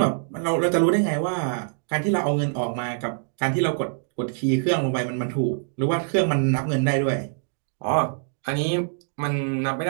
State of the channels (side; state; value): left; silent; digital silence